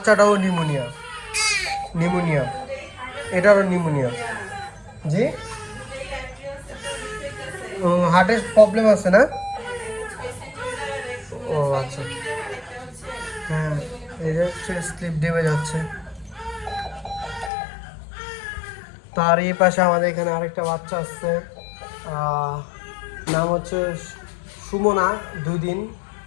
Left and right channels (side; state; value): right; drops out; at 17.5 s